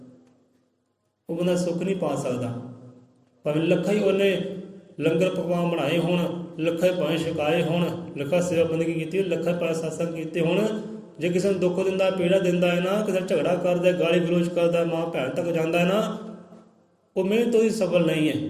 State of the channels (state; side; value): identical; both; correlation 1.00